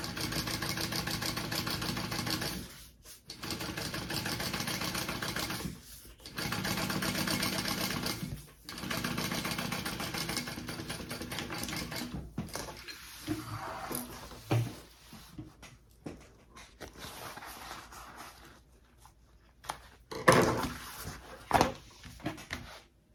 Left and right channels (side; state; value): both; identical; correlation 1.00